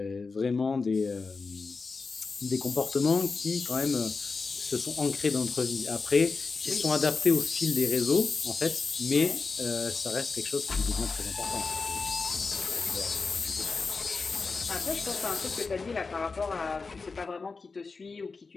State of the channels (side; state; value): right; quieter; 4.4 dB